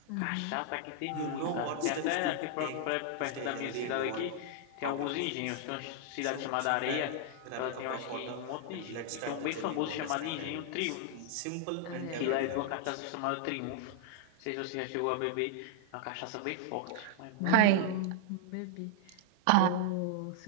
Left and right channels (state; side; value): different; both; correlation -0.01